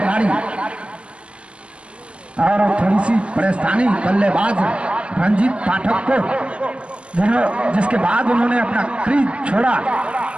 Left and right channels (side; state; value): left; late; 0.059 ms